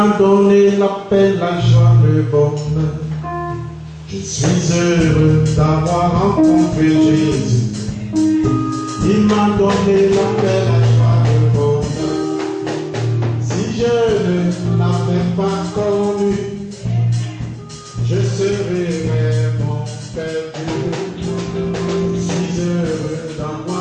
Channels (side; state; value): both; identical; correlation 1.00